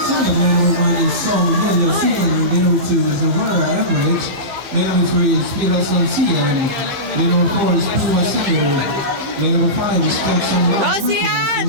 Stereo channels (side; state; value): left; late; 15 ms